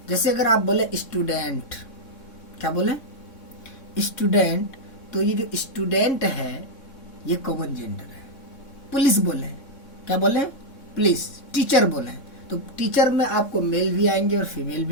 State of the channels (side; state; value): right; late; 3.6 ms